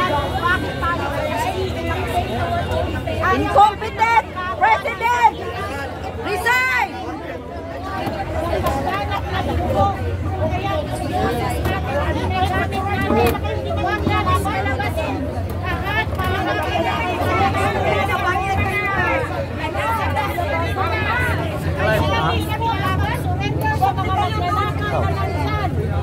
Incompetent President! Resign!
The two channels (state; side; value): identical; both; correlation 1.00